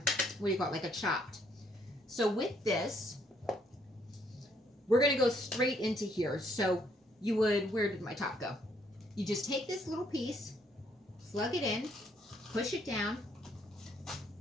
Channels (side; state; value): both; normal; correlation 0.69